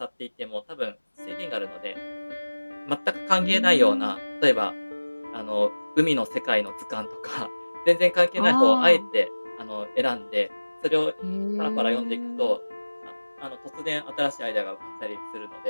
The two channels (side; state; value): both; inverted; correlation -1.00